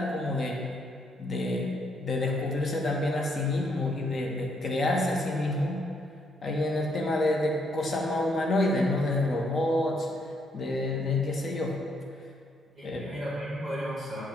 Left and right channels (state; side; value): normal; both; correlation 0.73